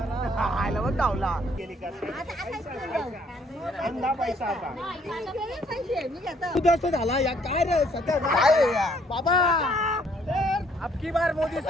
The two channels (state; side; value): normal; both; correlation 0.65